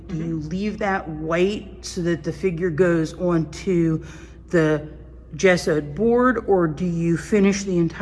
do you leave that white so that the figure goes onto the gessoed board, or do you finish the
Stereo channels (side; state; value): both; identical; correlation 1.00